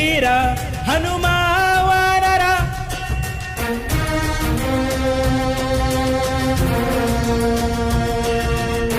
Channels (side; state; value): both; identical; correlation 1.00